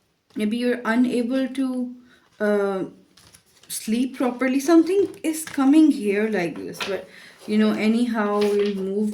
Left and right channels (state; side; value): identical; both; correlation 1.00